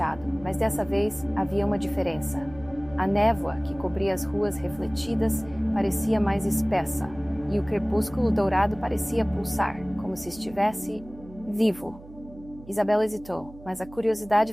mas dessa vez havia uma diferença. A névoa que cobria as ruas refletidas parecia mais espessa, e o crepúsculo dourado parecia pulsar, como se estivesse vivo. Isabela hesitou, mas a curiosidade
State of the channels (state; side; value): noise; right; hum, 19 dB below the sound